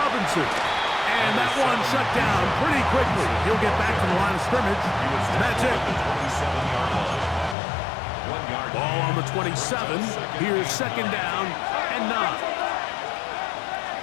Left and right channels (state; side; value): drops out; right; at 7.6 s